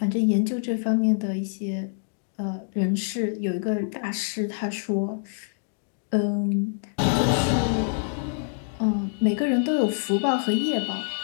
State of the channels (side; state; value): right; silent; digital silence